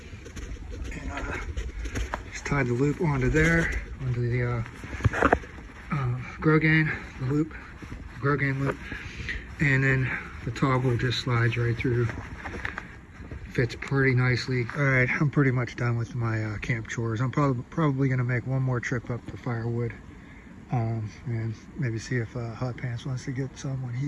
and just tied the loop onto there, onto the Grogan loop, and then the toggle just slides right through. Fits pretty nicely. All right, I'm pretty much done with my camp chores. I'm probably going to make one more trip up for firewood, and maybe see if Hot Pants wants to get some when he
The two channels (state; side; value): identical; both; correlation 1.00